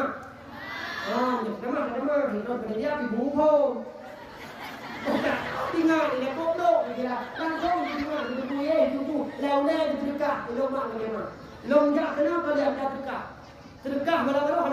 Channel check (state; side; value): identical; both; correlation 1.00